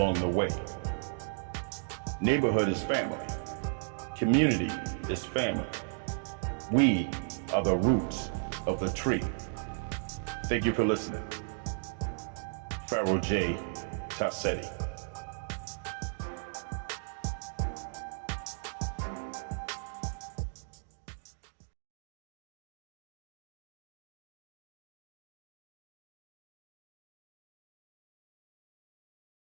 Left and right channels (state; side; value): silent; left; digital silence